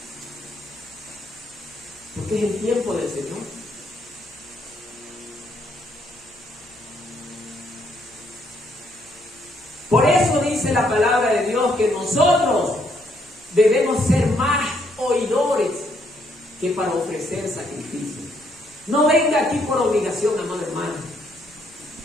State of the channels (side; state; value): left; noise; hum, 29 dB below the sound